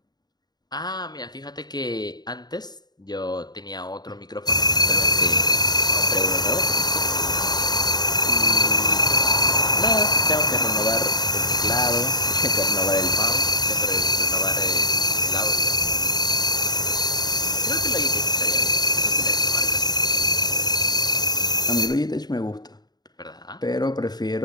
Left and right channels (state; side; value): late; right; 0.20 ms